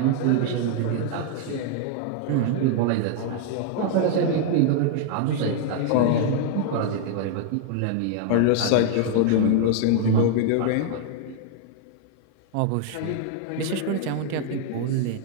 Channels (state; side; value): different; both; correlation 0.00